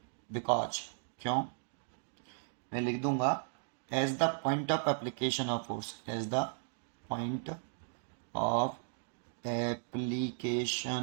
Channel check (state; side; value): silent; left; digital silence